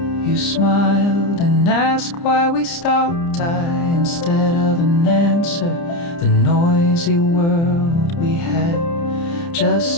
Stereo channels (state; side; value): late; right; 30 ms